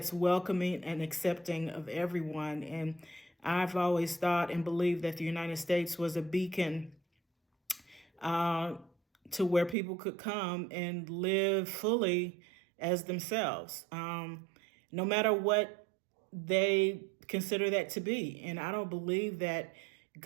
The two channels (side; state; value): left; drops out; at 9.8 s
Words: welcoming and accepting of everyone. And I've always thought and believed that the United States was a beacon to where people could come and live fully as themselves, no matter what they consider that to be. And I don't believe that